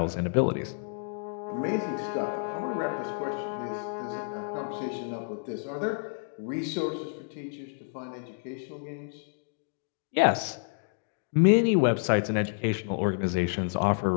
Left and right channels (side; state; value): right; silent; digital silence